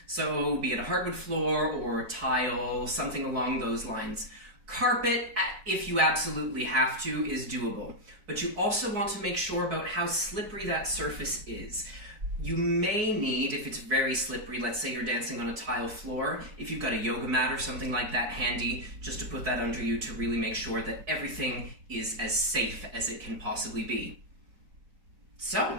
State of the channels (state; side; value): late; left; 4.7 ms